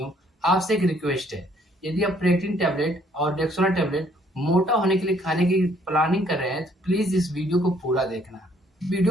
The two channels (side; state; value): both; normal; correlation 0.64